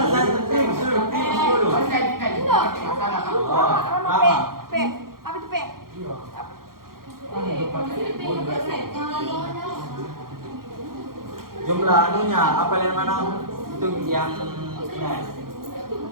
P. Apa itu P? Jumlah anunya apa yang mana? Itu yang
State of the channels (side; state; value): left; late; 0.92 ms